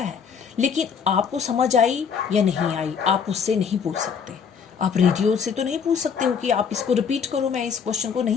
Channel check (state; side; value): quieter; right; 6.6 dB